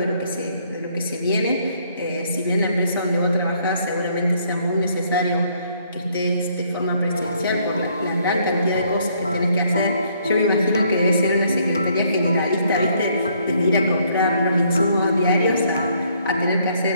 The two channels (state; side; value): inverted; both; correlation -0.67